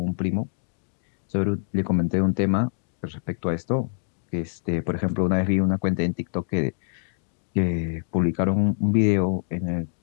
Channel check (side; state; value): right; silent; digital silence